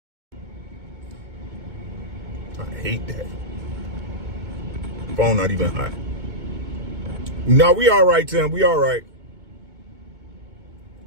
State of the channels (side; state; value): left; late; 2.2 ms